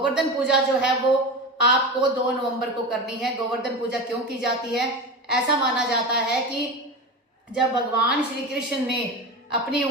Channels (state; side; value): normal; both; correlation 0.26